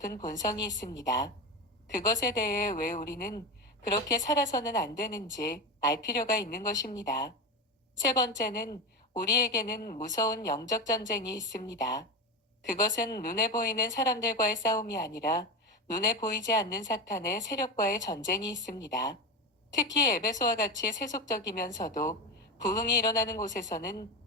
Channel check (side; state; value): both; normal; correlation 0.19